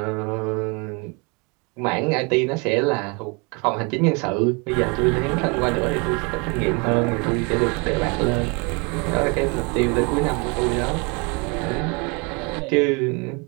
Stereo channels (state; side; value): quieter; left; 30.3 dB